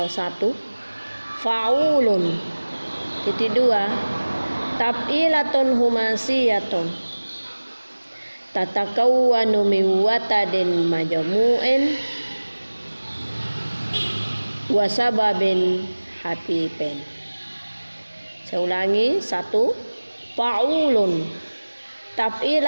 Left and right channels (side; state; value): both; inverted; correlation -1.00